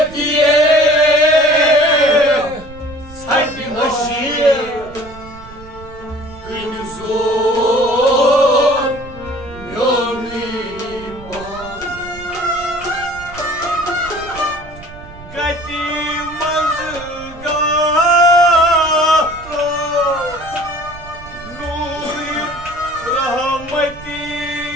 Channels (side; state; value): right; noise; rumble, 18 dB below the sound